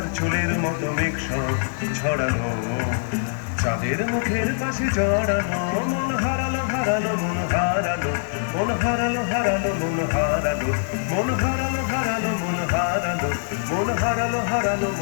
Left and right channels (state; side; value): silent; right; 63 dB below the other